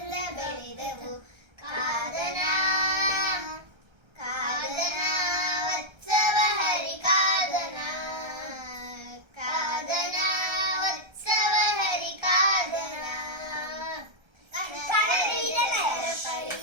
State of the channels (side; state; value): left; late; 1.3 ms